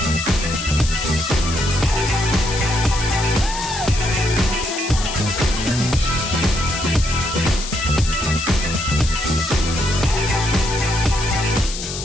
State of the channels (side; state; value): left; noise; hiss, 8 dB below the sound